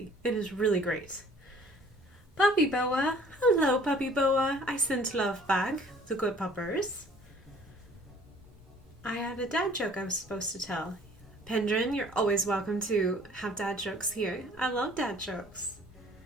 It is really great. Puppy Boa. Hello, Puppy Boa. I sent love back. The good puppers. I had a dad joke I was supposed to tell. Pendrin, you're always welcome to have dad jokes here. I love dad jokes.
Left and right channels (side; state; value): both; normal; correlation 0.54